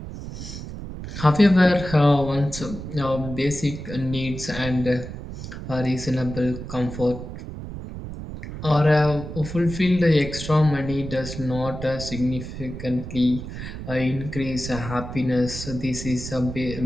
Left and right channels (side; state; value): right; noise; rumble, 9 dB below the sound